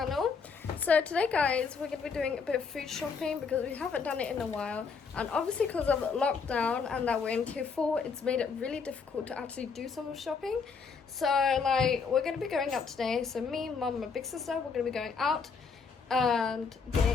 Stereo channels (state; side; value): quieter; right; 5.4 dB